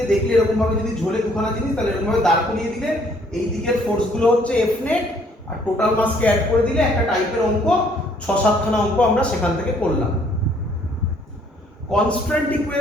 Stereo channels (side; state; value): both; normal; correlation 0.63